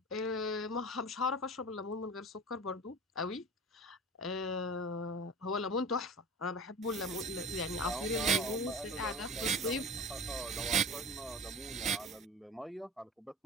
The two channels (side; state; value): both; normal; correlation 0.35